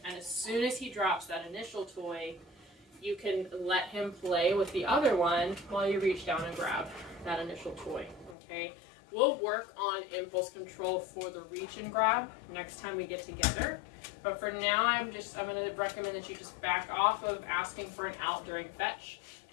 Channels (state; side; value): drops out; right; at 8.3 s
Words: And as soon as he drops that initial toy, you can let him play with the other one while you reach down and grab that initial toy, okay? We'll work on impulse control for the reach and grab next time we get together. But for now, I'm going to recommend that you just back off of asking for an out during fetch